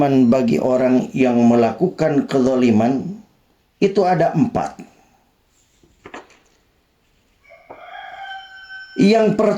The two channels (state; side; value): identical; both; correlation 1.00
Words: bagi orang yang melakukan kezaliman itu ada 4. Yang